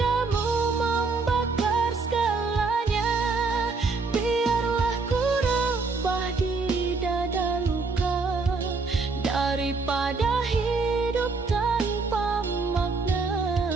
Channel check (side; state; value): left; quieter; 4.2 dB